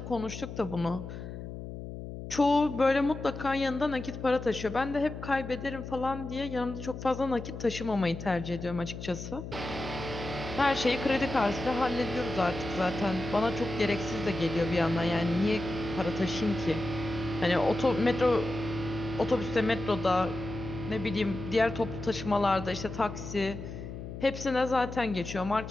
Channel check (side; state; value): left; noise; hum, 9 dB below the sound